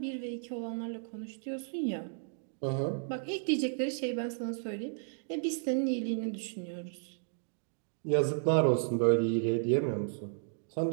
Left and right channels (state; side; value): silent; left; digital silence